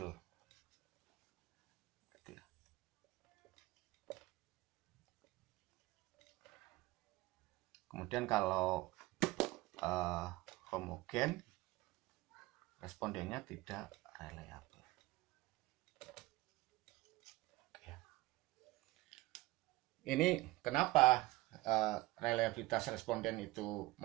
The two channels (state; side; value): quieter; left; 19.6 dB